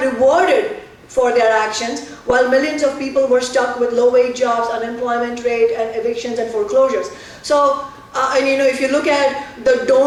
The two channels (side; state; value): both; identical; correlation 1.00